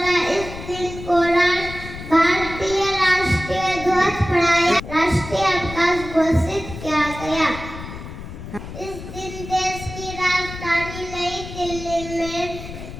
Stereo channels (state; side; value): noise; left; rumble, 11 dB below the sound